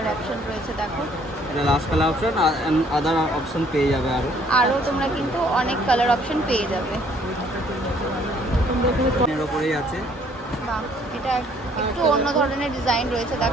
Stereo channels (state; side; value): normal; both; correlation 0.62